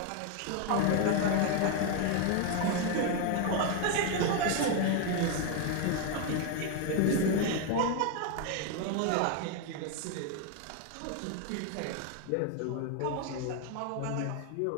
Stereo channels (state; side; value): different; both; correlation 0.01